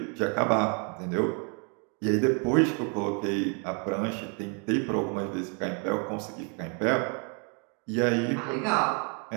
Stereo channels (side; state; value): left; quieter; 36.2 dB